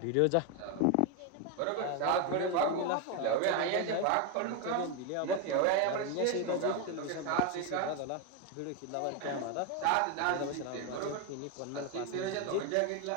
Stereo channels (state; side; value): different; both; correlation 0.02